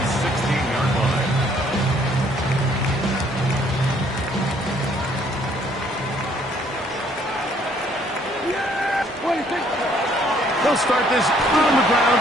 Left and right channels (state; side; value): normal; both; correlation 0.63